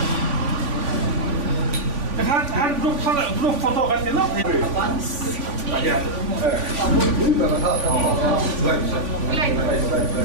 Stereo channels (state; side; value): late; left; 3.5 ms